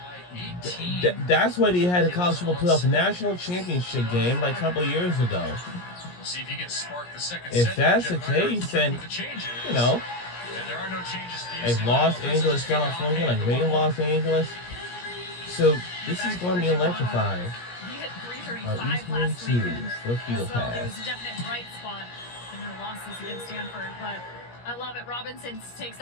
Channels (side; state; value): right; late; 17 ms